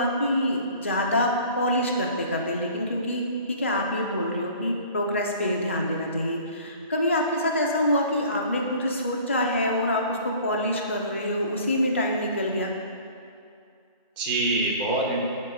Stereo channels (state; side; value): inverted; both; correlation -0.47